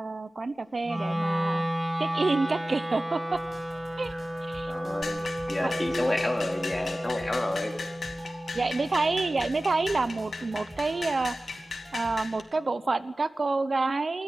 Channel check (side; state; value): both; normal; correlation 0.96